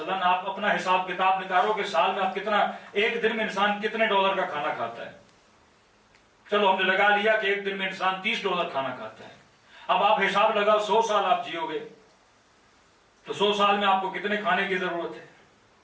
آپ اپنا حساب کتاب نکالو کہ سال میں آپ کتنا، ایک دن میں انسان کتنے ڈالر کا کھانا کھاتا ہے۔ چلو ہم نے لگا لیا کہ ایک دن میں انسان 30 ڈالر کھانا کھاتا ہے۔ اب آپ حساب لگاؤ 100 سال آپ جیو گے تو 100 سال میں آپ کو کتنے کھانے کی ضرورت ہے؟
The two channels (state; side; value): identical; both; correlation 1.00